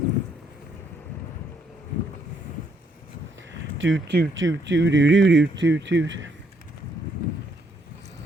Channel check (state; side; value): normal; both; correlation 0.72